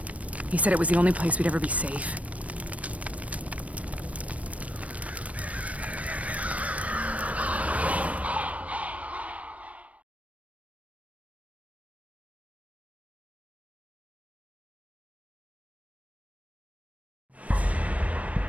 He said it was the only place we'd ever be safe.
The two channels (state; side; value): late; left; 0.066 ms